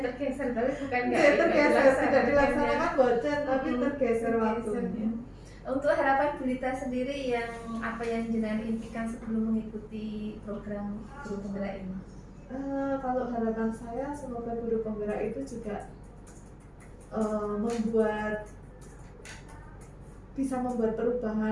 tergeser, tapi bukan tidak dilaksanakan bocan, tapi tergeser waktunya. Untuk harapan Bu Lita sendiri yang apa yang jenengan impikan sebelum mengikuti program guru penggerak ini? Kalau harapan saya semoga guru penggerak itu juga bisa membuat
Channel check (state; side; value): identical; both; correlation 1.00